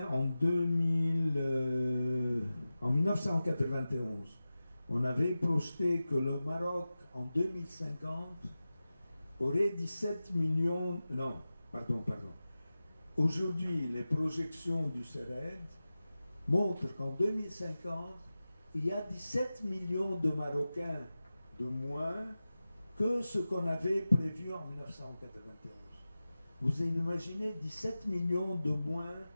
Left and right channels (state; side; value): inverted; both; correlation -0.95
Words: en 1991. On avait projeté que le Maroc, en 2050, aurait 17 millions... Non, pardon. Aujourd'hui, les projections du CERED montrent qu'en 2050, il y a 17 millions de Marocains de moins que ce qu'on avait prévu en 1991. Vous imaginez 17 millions de moins,